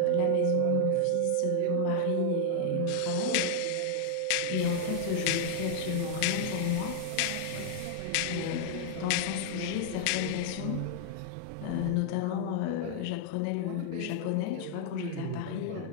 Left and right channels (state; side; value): different; both; correlation 0.00